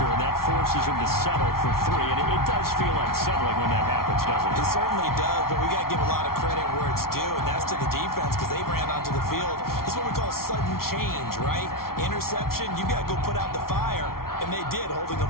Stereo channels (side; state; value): right; late; 0.93 ms